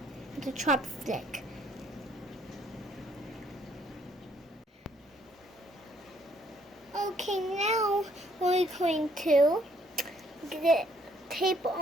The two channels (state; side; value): normal; both; correlation 0.66